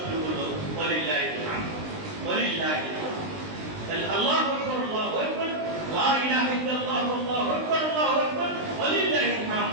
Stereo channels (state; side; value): late; left; 19 ms